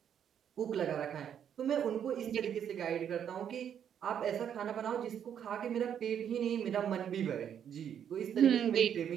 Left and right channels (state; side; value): quieter; left; 8.9 dB